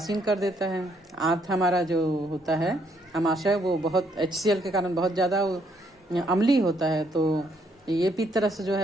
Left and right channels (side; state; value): both; normal; correlation 0.71